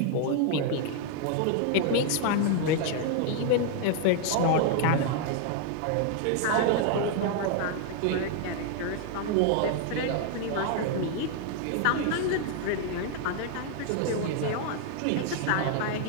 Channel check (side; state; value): both; different; correlation 0.00